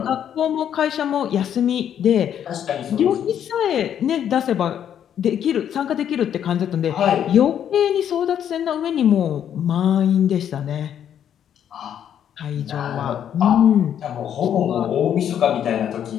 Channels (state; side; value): quieter; right; 9.5 dB